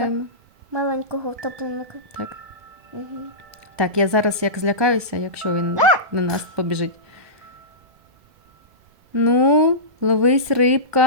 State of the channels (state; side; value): late; left; 1.2 ms